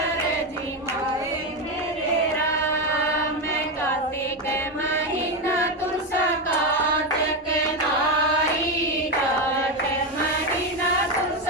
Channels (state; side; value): normal; both; correlation 0.11